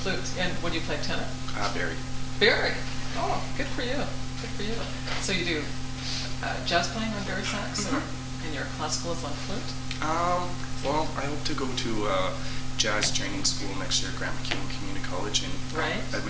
And when you play tenor? Barry. Barry. Oh, good for you. Good for you. So you do jazz playing on Barry sax, or and your classical is on flute? Well, I hope to go to jazz training school next year at Grand Maquin Community College in Right.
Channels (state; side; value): identical; both; correlation 1.00